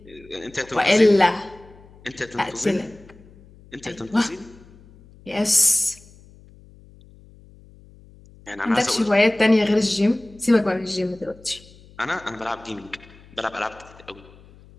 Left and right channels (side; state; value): left; noise; hum, 24 dB below the sound